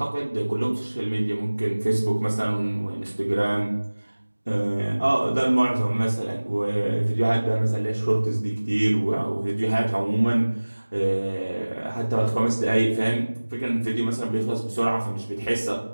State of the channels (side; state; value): both; inverted; correlation -1.00